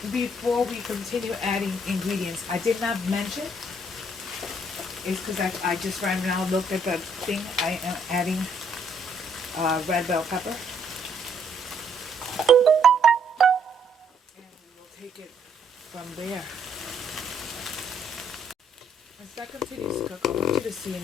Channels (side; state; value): both; normal; correlation 0.68